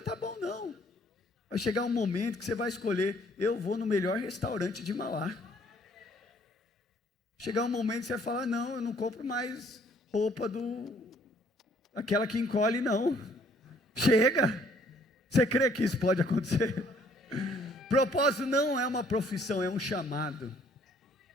tá bom, não. Vai chegar um momento que você vai escolher: eu vou no melhor restaurante de Mauá. Chegar um momento que você vai falar: não, eu não compro mais roupa aquela que encolhe, não. Chega. Você crê que isso pode acontecer? Propósito não é uma profissão, é um chamado.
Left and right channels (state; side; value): normal; both; correlation 0.62